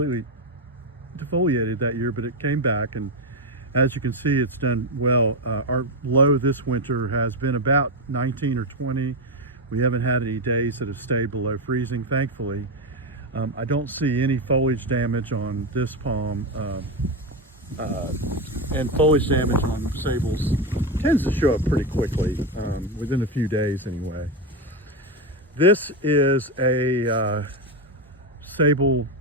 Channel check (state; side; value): normal; both; correlation 0.10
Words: defoliated that year, but it came back, and as you can see, it's done well. Our low this winter has been about 19 or 20. We haven't had any days that have stayed below freezing, thankfully. I don't see any foliage damage on this palm, and foliage damage on sables tends to show up pretty quickly, within a few days anyway. This is a Sabal